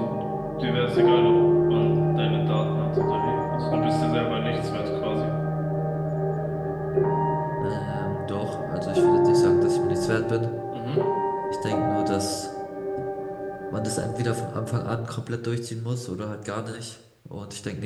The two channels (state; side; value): identical; both; correlation 1.00